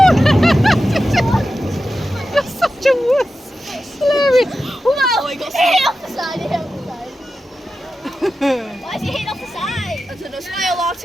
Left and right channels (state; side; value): normal; both; correlation 0.92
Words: You're such a wuss. Hilarious. Oh, he got hit off the side. Why is he hitting off the side? I don't know. Smile at